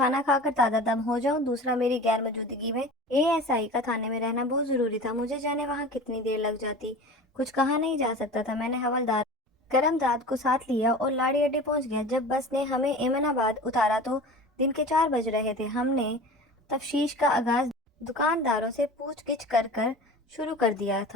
کھا کر تازہ دم ہو جاؤں، دوسرا میری غیر موجودگی میں اے ایس آئی کا تھانے میں رہنا بہت ضروری تھا۔ مجھے جانے وہاں کتنی دیر لگ جاتی کچھ کہا نہیں جا سکتا تھا۔ میں نے حوالدار کرم داد کو ساتھ لیا اور لاڑی اڈے پہنچ گیا۔ جب بس نے ہمیں ایمن آباد اتارا تو دن کے 4 بج رہے تھے۔ ہم نے تفتیش کا آغاز دکانداروں سے پوچھ گچھ کر شروع کر دیا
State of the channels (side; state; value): both; normal; correlation 0.36